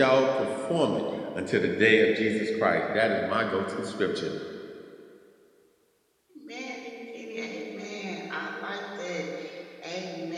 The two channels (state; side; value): identical; both; correlation 1.00